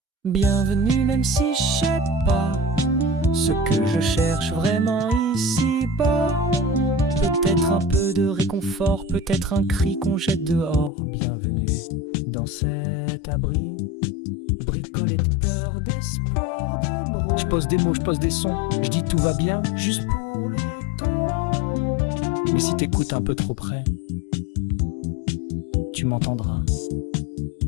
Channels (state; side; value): drops out; right; at 10.9 s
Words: Bienvenue même si je sais pas ce que je cherche vraiment ici-bas. Peut-être un peu de réconfort, peut-être un cri qu'on jette dehors. Bienvenue dans cet abri, bricolé de peur, d'espoir, de bro. Je pose des mots, je pose des sons, je dis tout va bien, juste pour le ton. Mais si t'écoutes un peu trop près, tu m'entendras